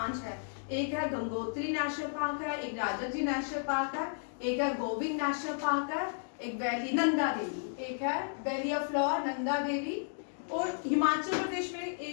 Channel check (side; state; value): right; silent; digital silence